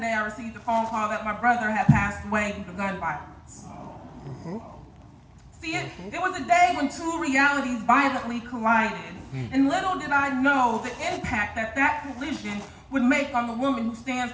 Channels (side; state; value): both; identical; correlation 1.00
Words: I received a phone call that my brother had passed away due to gun violence. See, it was a day when two realities violently collided, and little did I know the impact that that collision would make on the woman who stands